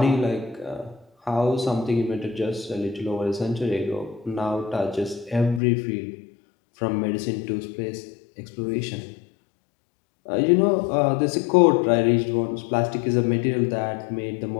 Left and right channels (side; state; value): right; drops out; at 5.6 s